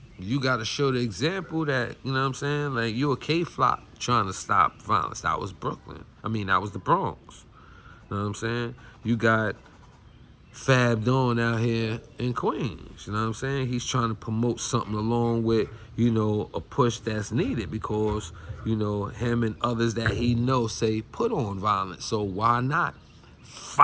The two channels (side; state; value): both; identical; correlation 1.00